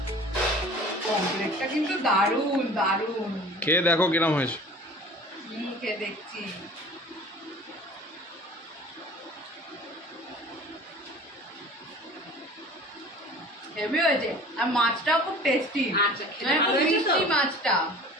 কমপ্লেটটা কিন্তু দারুণ দারুণ। খেয়ে দেখো কিরম হয়েছে। খেয়ে দেখছি। হেভি হয়েছে আর মাছটাও খুব টেস্টি। আচ্ছা, খেতে ভালো হয়েছে তো? মিষ্টি মাছটা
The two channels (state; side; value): normal; both; correlation 0.44